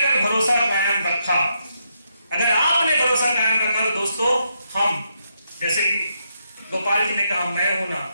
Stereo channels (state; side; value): inverted; both; correlation -0.80